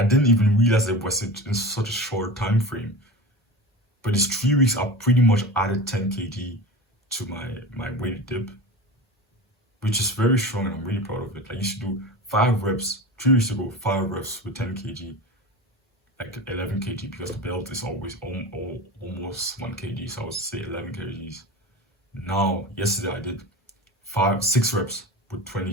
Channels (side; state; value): both; normal; correlation 0.30